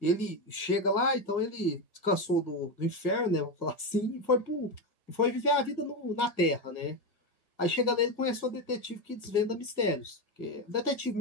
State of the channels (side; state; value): left; late; 1.6 ms